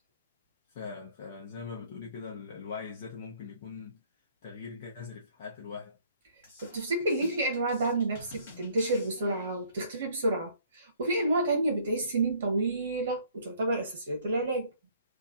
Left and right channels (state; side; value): inverted; both; correlation -0.59